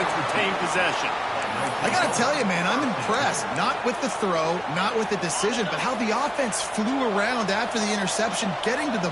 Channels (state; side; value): identical; both; correlation 1.00